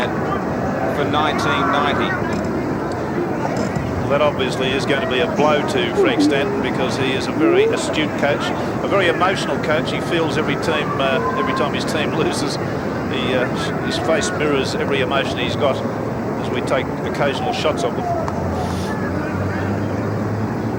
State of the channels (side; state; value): both; identical; correlation 1.00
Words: for 1990. Well, that obviously is going to be a blow to Frank Stanton, because he is a very astute coach, a very emotional coach. He feels every time his team loses. His face mirrors every emotion he's got as we take occasional shots of them.